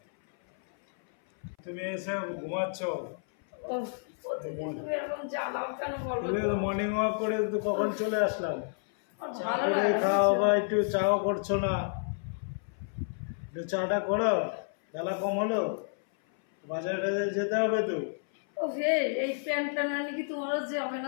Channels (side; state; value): right; silent; 57 dB below the other